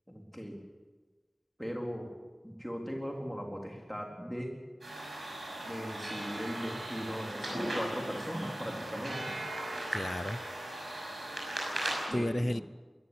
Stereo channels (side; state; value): both; normal; correlation 0.96